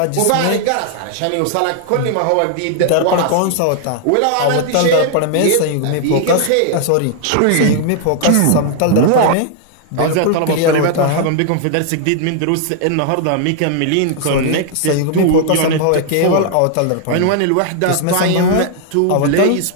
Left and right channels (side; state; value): both; different; correlation 0.00